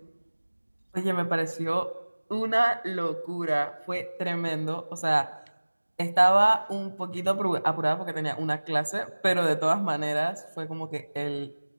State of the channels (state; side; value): inverted; both; correlation -1.00